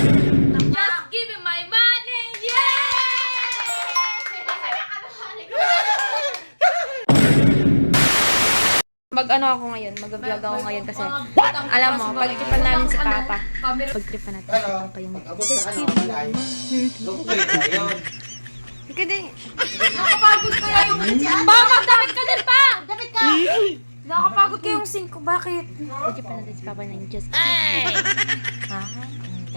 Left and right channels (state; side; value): inverted; both; correlation -1.00